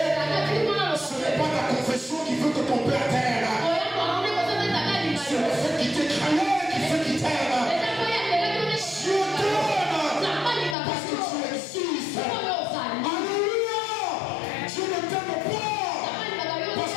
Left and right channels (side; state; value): right; drops out; at 10.8 s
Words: Ce n'est pas ta confession qui veut que ton père t'aime. C'est le fait qu'il t'ait créé qui fait qu'il t'aime. Dieu t'aime parce que tu existes. Alléluia. Dieu ne t'aime pas parce